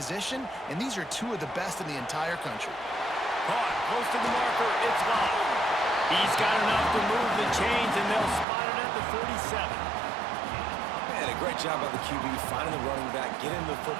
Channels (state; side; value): drops out; left; at 8.5 s